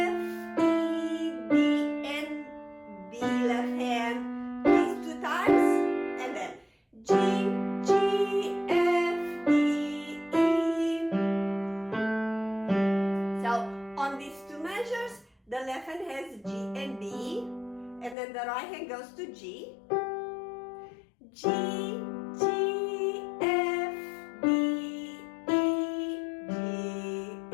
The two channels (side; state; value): right; drops out; at 18.2 s